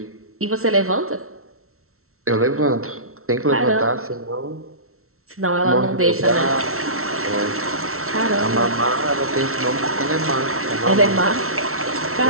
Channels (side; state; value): left; late; 0.63 ms